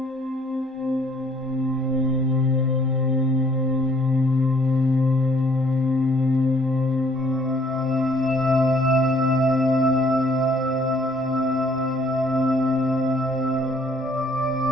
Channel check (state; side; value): normal; both; correlation 0.62